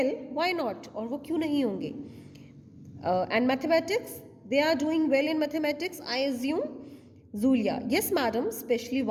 why not, और वो क्यों नहीं होंगे. And mathematics, they are doing well in mathematics, I assume. Zulia, yes madam, especially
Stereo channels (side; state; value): both; identical; correlation 1.00